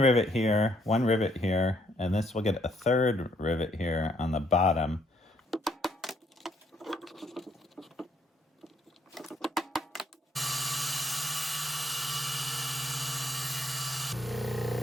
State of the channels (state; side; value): normal; both; correlation 0.69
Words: here, and this will get a third rivet here on the bottom.